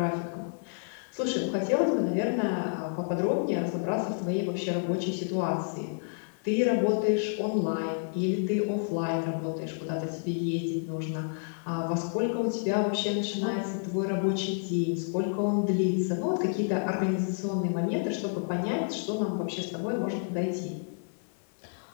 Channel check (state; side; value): silent; right; digital silence